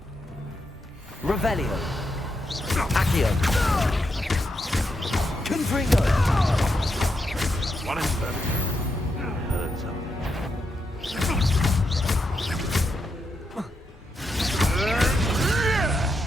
Revelio. Accio. Confringo. What is that? Heard something.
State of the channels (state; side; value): normal; both; correlation 0.83